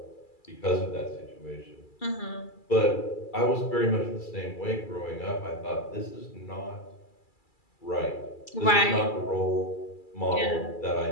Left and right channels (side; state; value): right; late; 2.3 ms